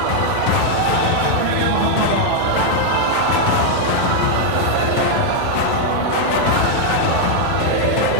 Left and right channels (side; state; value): both; different; correlation 0.00